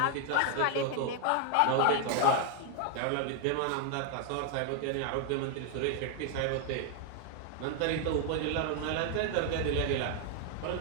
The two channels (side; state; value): both; different; correlation 0.01